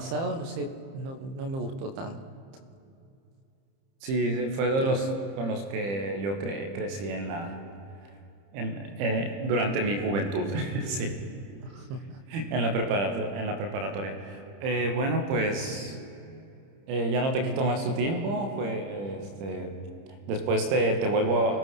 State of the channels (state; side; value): late; left; 30 ms